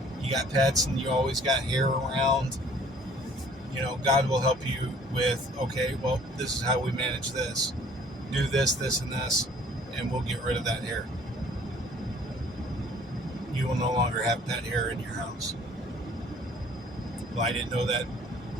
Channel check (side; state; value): both; normal; correlation 0.55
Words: got pets and you always got hair around, God will help you with, okay, well, this is how we manage this. Do this, this, and this, and we'll get rid of that hair. You will no longer have pet hair in your house. Well, I didn't know that.